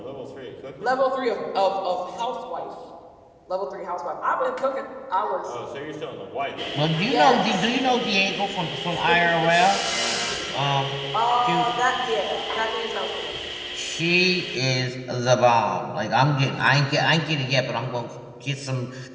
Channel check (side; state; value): both; identical; correlation 1.00